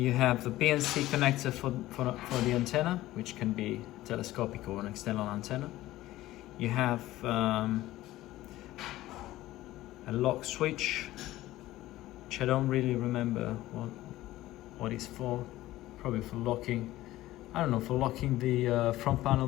have the BNC connector for the antenna, which can be telescopic or an external antenna. You have a lock switch, which I don't really remember what it's for. Probably for locking, I don't know, for locking the front panel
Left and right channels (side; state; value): right; quieter; 16.1 dB